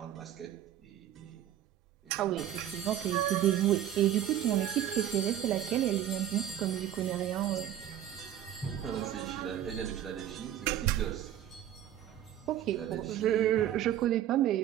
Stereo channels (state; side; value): quieter; left; 11.4 dB